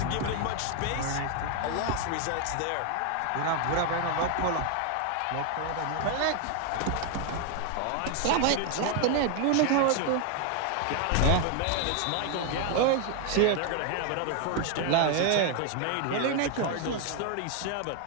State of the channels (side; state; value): both; different; correlation 0.01